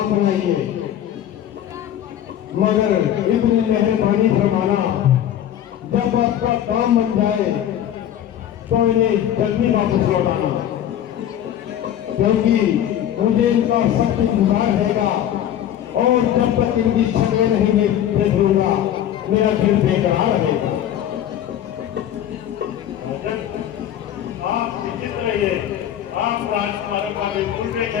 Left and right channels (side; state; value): right; quieter; 10.8 dB